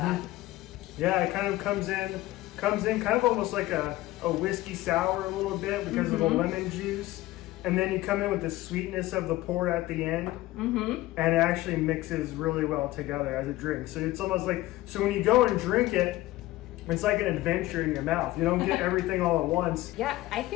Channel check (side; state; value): right; quieter; 17.3 dB